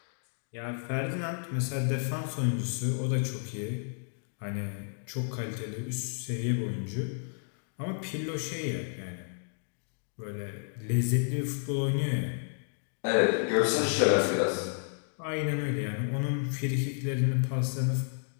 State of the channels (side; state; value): right; silent; digital silence